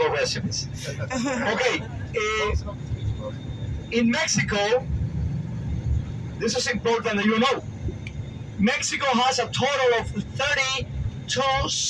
recipes. Okay, in Mexico, this is important that you know. Mexico has a total of 32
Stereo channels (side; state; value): both; identical; correlation 1.00